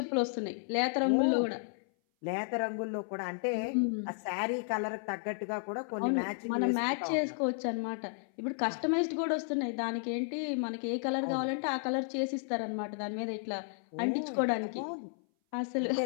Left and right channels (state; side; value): silent; right; 56 dB below the other